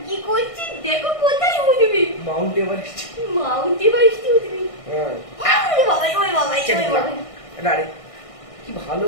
কি করছিস, দেখো কোথায় উঠবি, মাউন্ট এভারেস্ট উঠবি। কি ভালো,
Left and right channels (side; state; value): right; late; 1.6 ms